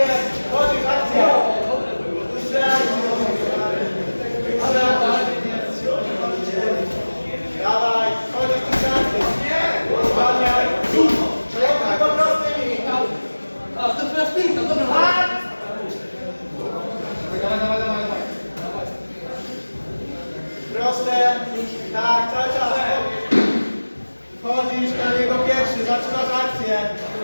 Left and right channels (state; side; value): inverted; both; correlation -1.00